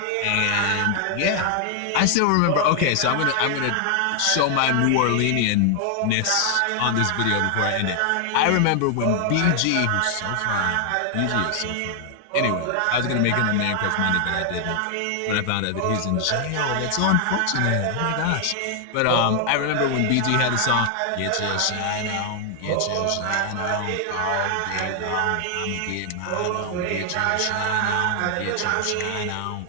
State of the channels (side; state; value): both; different; correlation 0.00